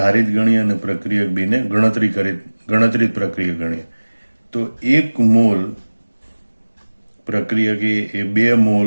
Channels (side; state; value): both; inverted; correlation -1.00